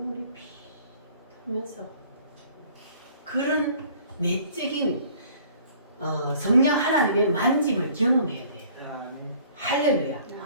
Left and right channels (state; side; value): inverted; both; correlation -0.54